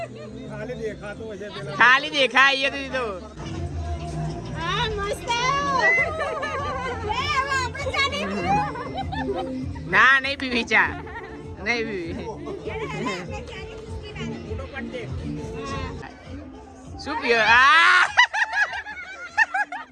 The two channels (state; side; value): identical; both; correlation 1.00